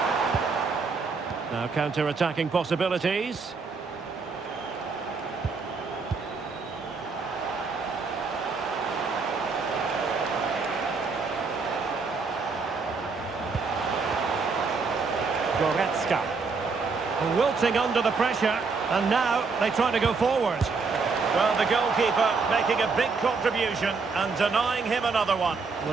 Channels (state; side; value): quieter; left; 4.6 dB